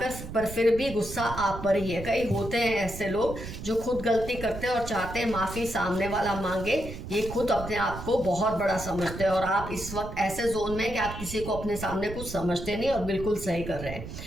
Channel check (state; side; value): noise; right; rumble, 10 dB below the sound